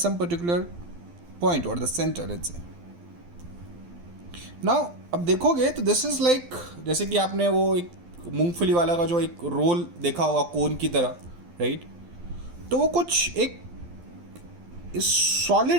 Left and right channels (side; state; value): left; late; 12 ms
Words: particular point or the center, let's say. Now अब देखोगे तो this is like, जैसे कि आपने वो एक मूंगफली वाला का जो एक रोल देखा होगा कोन की तरह, राइट? तो वो कुछ एक